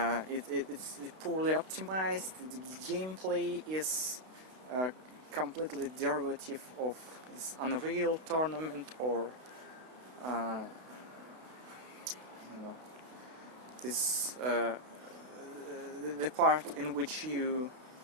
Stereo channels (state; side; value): late; left; 32 ms